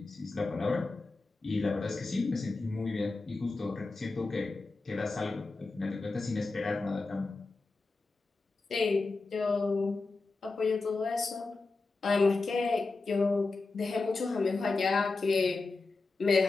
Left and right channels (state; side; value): quieter; right; 3.7 dB